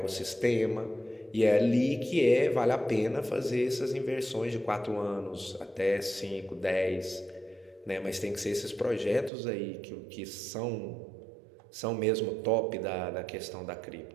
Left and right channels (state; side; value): drops out; left; at 9.3 s